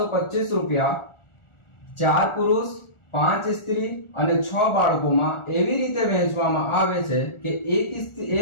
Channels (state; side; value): late; right; 1.4 ms